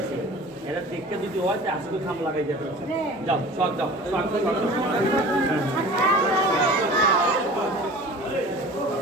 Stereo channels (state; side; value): normal; both; correlation 0.41